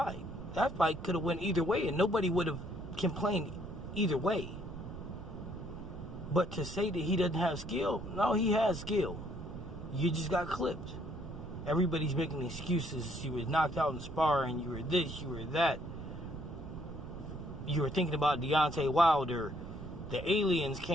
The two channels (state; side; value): noise; right; rumble, 11 dB below the sound